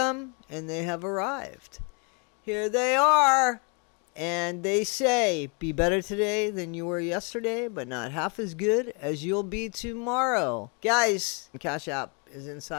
and they have arrived. Here they are. And they say, be better today than you were yesterday, but not half as good as you'll be tomorrow. Guys, Cash App is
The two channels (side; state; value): right; quieter; 35.2 dB